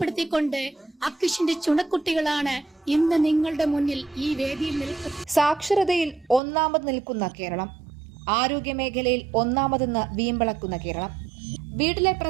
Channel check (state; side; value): drops out; left; at 6.4 s